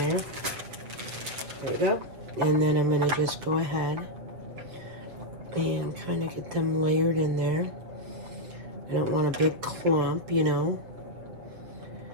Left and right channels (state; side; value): late; left; 7.7 ms